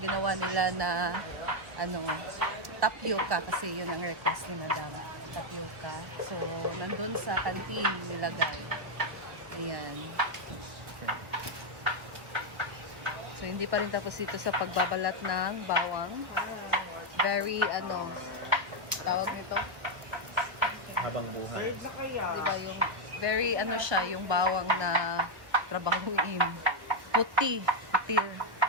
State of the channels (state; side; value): late; left; 1.1 ms